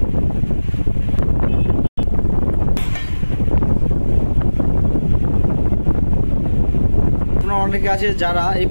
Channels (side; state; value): both; inverted; correlation -1.00